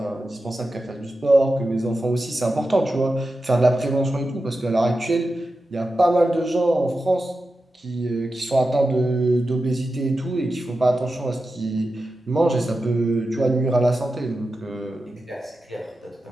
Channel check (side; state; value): both; normal; correlation 0.91